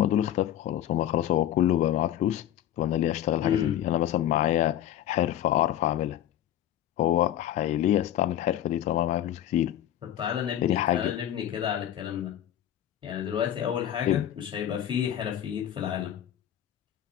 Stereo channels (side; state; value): right; quieter; 11.5 dB